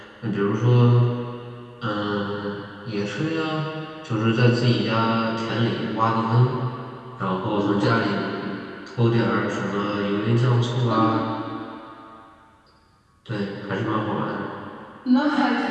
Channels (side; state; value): both; identical; correlation 1.00